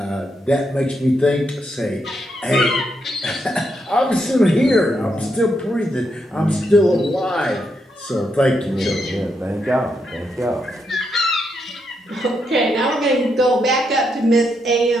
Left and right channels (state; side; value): normal; both; correlation 0.80